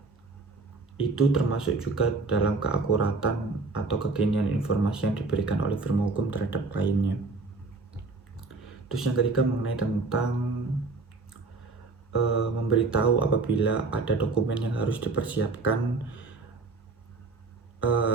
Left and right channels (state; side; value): quieter; left; 3.9 dB